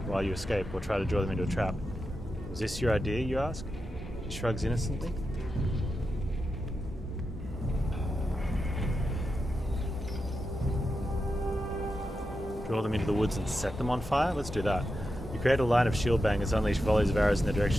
while you escape or try to draw them into a trap? Was this your idea, you ask? She shrugs innocently. Draw them into the woods and set them on fire? Let's do that. You create a line of shield bangers, unleash volleys of arrows in their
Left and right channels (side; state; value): both; normal; correlation 0.88